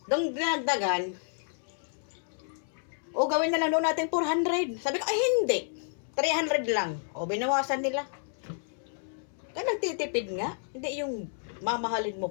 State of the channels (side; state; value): right; silent; 58 dB below the other